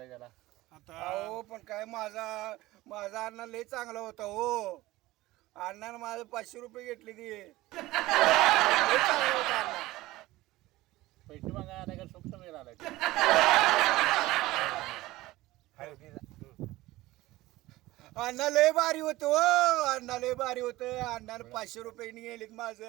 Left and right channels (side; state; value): left; quieter; 18.1 dB